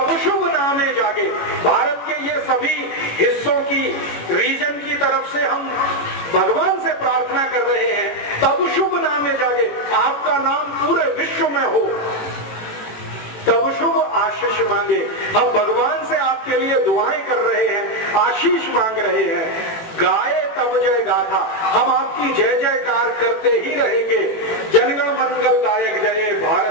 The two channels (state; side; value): late; right; 18 ms